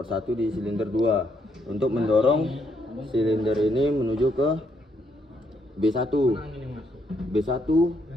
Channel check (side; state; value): both; normal; correlation 0.74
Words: di silinder 2 untuk mendorong silinder ini menuju ke B1. B1